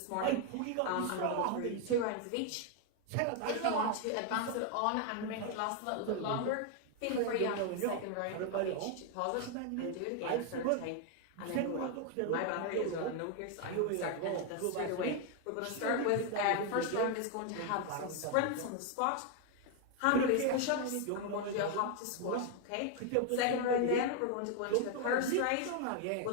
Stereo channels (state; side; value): different; both; correlation 0.01